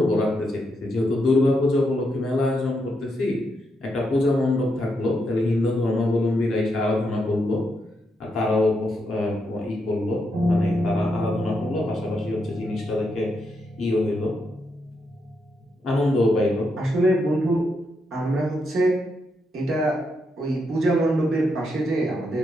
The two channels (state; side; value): normal; both; correlation 0.81